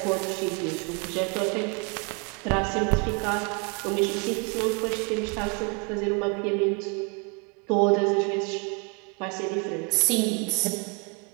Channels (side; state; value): left; quieter; 33.7 dB